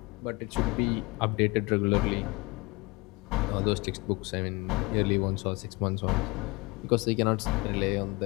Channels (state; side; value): quieter; right; 26.1 dB